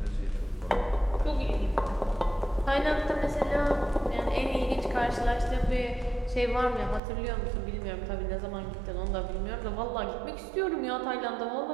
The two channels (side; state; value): left; drops out; at 7.0 s